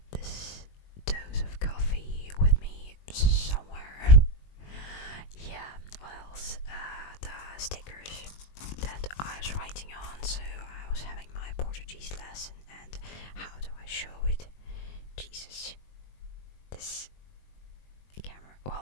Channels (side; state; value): right; late; 21 ms